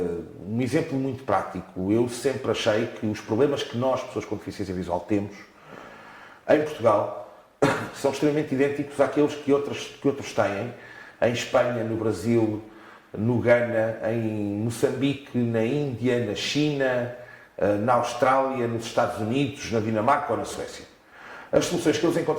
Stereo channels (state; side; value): identical; both; correlation 1.00